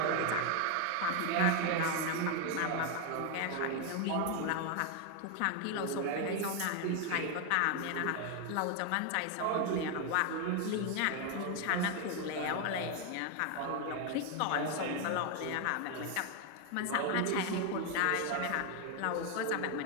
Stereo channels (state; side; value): different; both; correlation 0.01